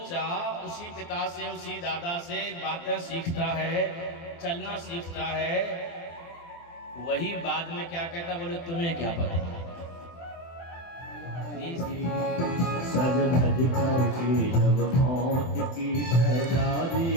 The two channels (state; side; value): late; right; 24 ms